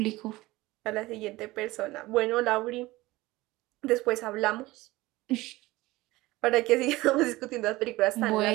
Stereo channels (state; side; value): quieter; left; 19.4 dB